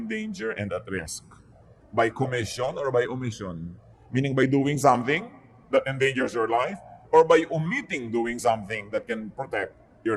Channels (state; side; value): identical; both; correlation 1.00